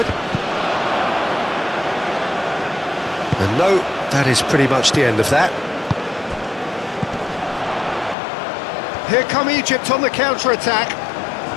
And no, that is pretty much the end of that. Here come Egypt on the counter-attack.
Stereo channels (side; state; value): right; drops out; at 8.2 s